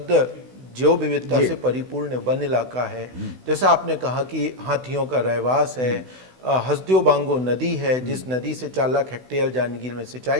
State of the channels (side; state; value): left; late; 16 ms